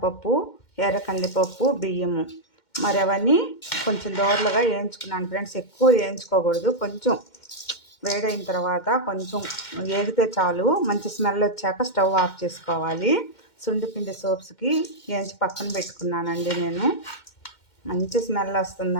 ఎర్ర కందిపప్పు, బియ్యము మరి అవన్నీ కొంచెం దోరలుగా వేయించుకున్నాను ఫ్రెండ్స్. ఎక్కువ వేయించుకోకూడదు, కొంచెం వేడైన తర్వాత కొంచెం ఏగితే చాలు. మంచి స్మెల్ వచ్చాక స్టవ్ ఆఫ్ చేసుకోవాలి. సుండిపిండి సోప్స్కి వేయించి పక్కన పెట్టుకున్నానండి నేను. మంచి స్మెల్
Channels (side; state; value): right; late; 2.1 ms